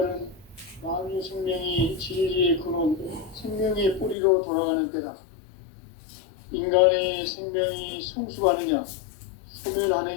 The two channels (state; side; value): drops out; right; at 4.2 s